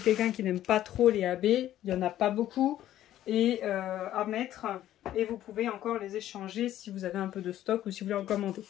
quelqu'un qui n'aime pas trop les AB, il n'y en a pas beaucoup et à mettre. Et vous pouvez encore les échanger si vous avez un peu de stock ou si vous voulez en commander.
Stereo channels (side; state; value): right; quieter; 12.7 dB